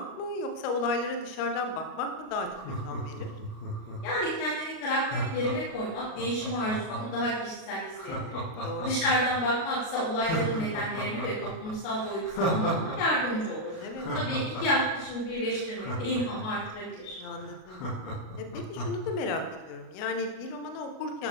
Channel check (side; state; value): right; late; 37 ms